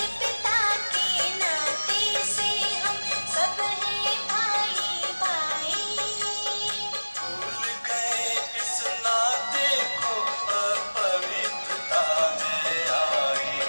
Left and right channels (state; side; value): inverted; both; correlation -1.00